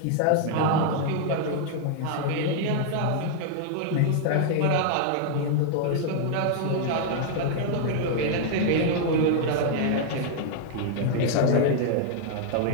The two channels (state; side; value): different; both; correlation 0.00